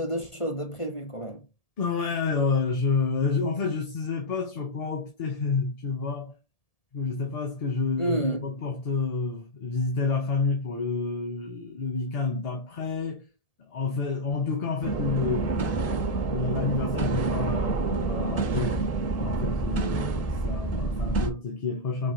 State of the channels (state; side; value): late; right; 1.7 ms